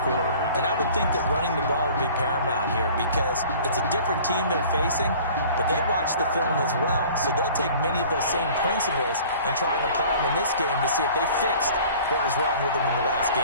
quarter. And I would think that running the ball would be paramount here because it's a different team they're facing, but they watch the film as well. So they'll take many of those same principles and try and apply them in this game to see if they fixed what was wrong with them in the last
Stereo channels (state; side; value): inverted; both; correlation -0.47